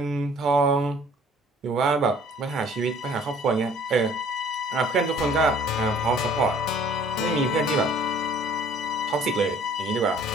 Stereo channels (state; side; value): normal; both; correlation 0.54